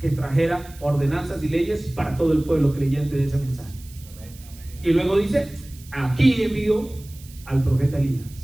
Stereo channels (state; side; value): noise; right; hiss, 22 dB below the sound